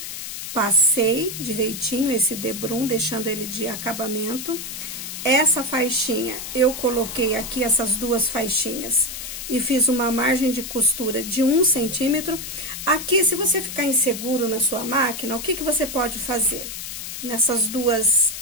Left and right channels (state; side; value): noise; left; hiss, 8 dB below the sound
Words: passei direitinho esse debrum, deixando ele de acabamento. Essa faixinha, eu coloquei aqui essas 2 faixinhas e fiz uma margem de costura de 1 centímetro. Aqui, se você ficar inseguro na sua máquina, o que você pode fazer nessas 2